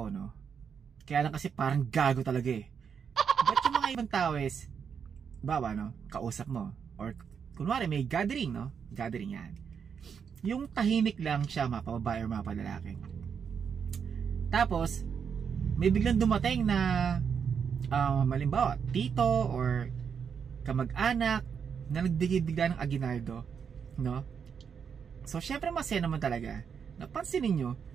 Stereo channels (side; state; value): left; quieter; 6.9 dB